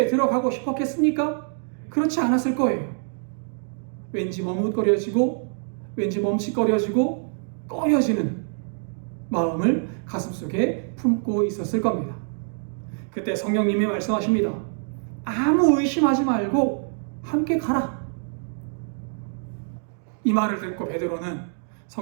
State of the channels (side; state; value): left; silent; 62 dB below the other